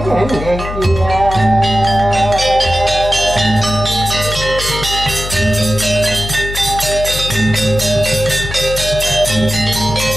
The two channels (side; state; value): left; noise; hum, 8 dB below the sound